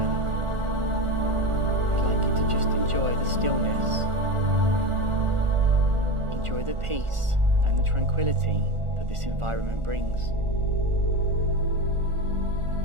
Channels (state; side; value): late; left; 1.4 ms